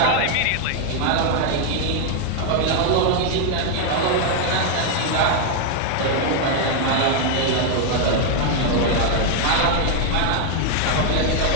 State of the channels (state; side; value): different; both; correlation 0.00